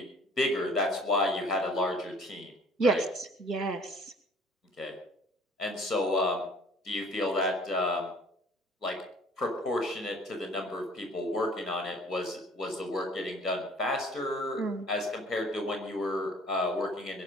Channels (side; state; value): both; normal; correlation 0.53